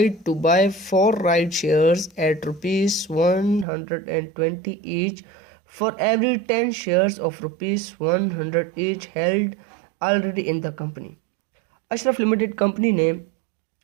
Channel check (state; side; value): drops out; left; at 3.7 s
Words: to buy 4 right shares at rupees 120 each for every 10 shares of rupees 100 each held already in the company। Ashraf limited company ने